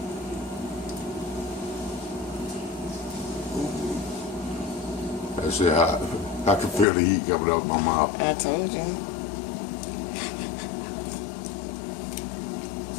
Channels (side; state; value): right; drops out; at 6.9 s